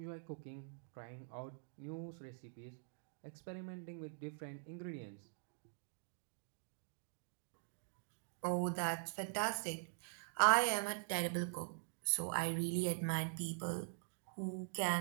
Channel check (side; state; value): left; silent; digital silence